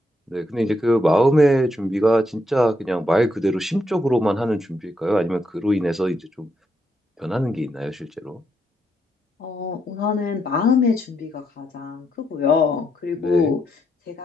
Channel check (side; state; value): both; normal; correlation 0.79